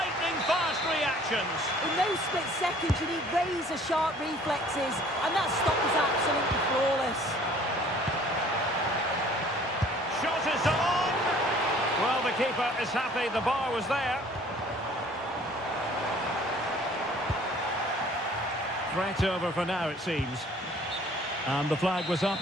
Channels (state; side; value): normal; both; correlation 0.54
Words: reactions. In those split seconds, you need razor-sharp reflexes, and that stop was absolutely flawless. Shot is on! Well, the keeper is happy the bar was there. Threat over for now, it seems. And the flag was